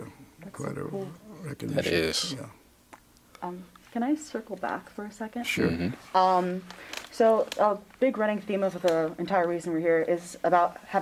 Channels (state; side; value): identical; both; correlation 1.00